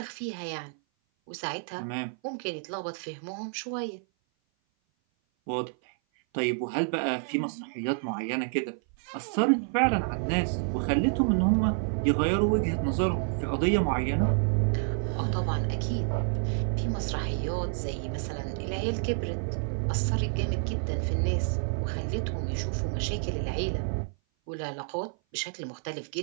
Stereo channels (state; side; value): silent; left; 56 dB below the other